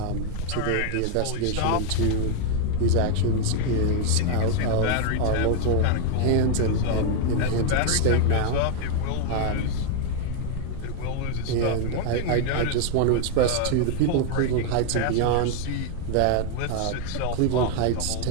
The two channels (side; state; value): both; different; correlation 0.01